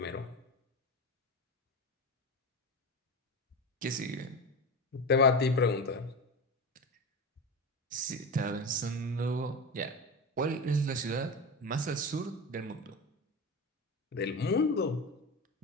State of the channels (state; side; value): normal; both; correlation 0.23